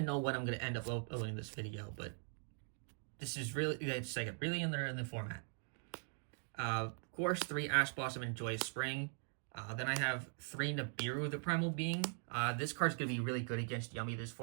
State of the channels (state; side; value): silent; left; 50 dB below the other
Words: know when I'm going to end up uploading this video, but this is really, it's like really in the format. Of course, 3 Ash Blossom and Joyous Spring. Then I have 3 Nibiru, the Primal Being. This card's going to be really good against Yummy this